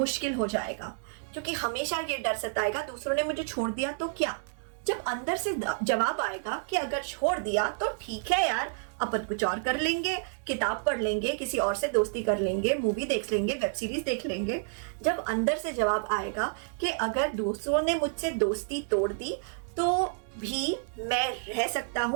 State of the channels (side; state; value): left; silent; digital silence